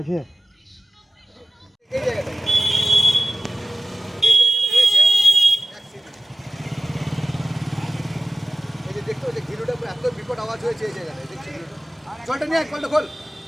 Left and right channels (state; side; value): normal; both; correlation 0.95